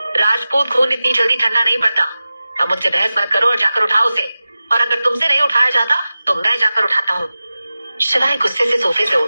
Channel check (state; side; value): inverted; both; correlation -0.95